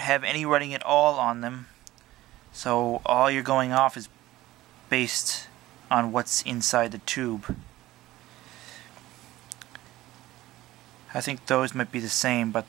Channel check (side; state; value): left; quieter; 16.5 dB